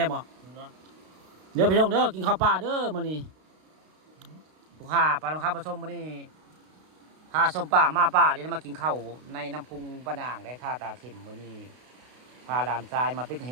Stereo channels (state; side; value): late; left; 32 ms